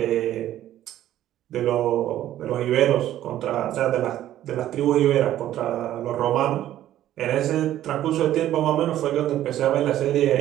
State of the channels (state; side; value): quieter; left; 12.7 dB